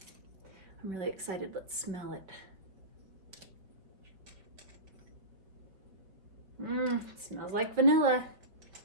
I'm really excited. Let's smell it. It smells like vanilla.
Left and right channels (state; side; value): late; left; 5.0 ms